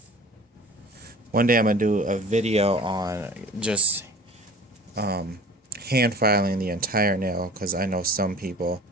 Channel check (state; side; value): normal; both; correlation 0.44